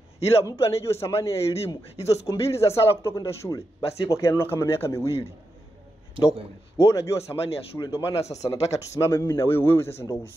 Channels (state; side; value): normal; both; correlation 0.87